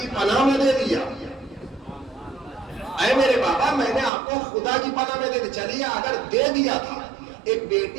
پناہ میں دے دیا. اے میرے بابا، میں نے آپ کو خدا کی پناہ میں دے دیا. چلیے، اگر دے دیا تھا، ایک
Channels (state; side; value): drops out; left; at 4.1 s